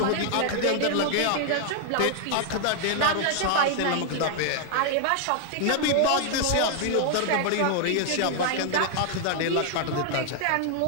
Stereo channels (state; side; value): different; both; correlation 0.00